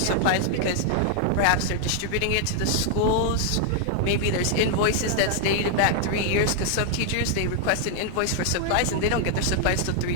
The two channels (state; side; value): different; both; correlation 0.00